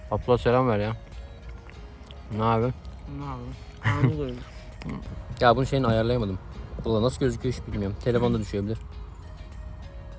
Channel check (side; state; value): both; identical; correlation 1.00